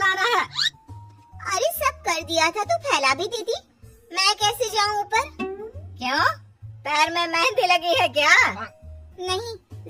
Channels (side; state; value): both; identical; correlation 1.00